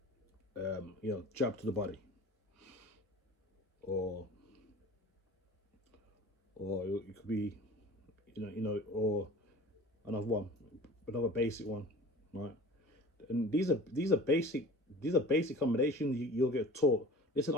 jab to the body, or it could be, or another basic one, right? And these are basic combinations you'll get taught. Listen,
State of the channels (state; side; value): normal; both; correlation 0.41